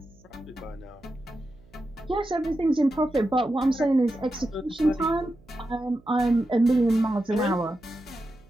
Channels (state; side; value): noise; right; hum, 28 dB below the sound